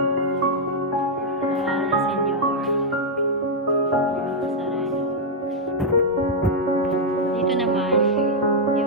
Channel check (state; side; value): normal; both; correlation -0.03